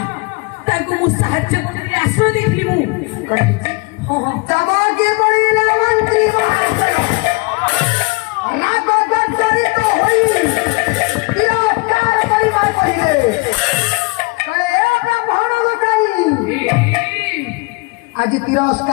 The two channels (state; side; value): quieter; right; 27.8 dB